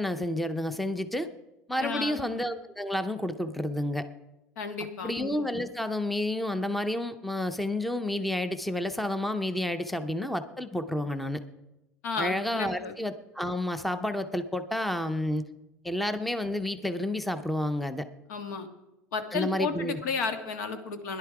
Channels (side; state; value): both; normal; correlation 0.74